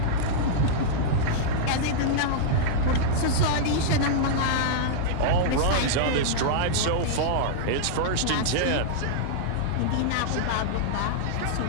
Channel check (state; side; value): different; both; correlation -0.02